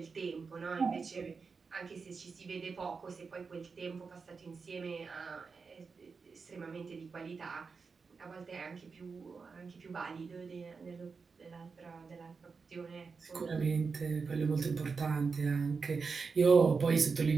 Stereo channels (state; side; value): quieter; left; 5.0 dB